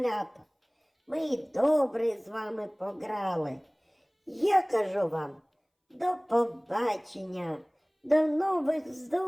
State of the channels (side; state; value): both; identical; correlation 1.00